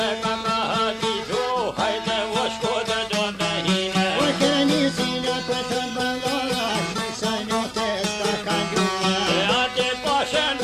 ka ma hatitu, hajde o shko dhe do me hine. O kërni zila për të bëllora, shmisa note s'ka ka gjua. E ati poshen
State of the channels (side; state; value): both; identical; correlation 1.00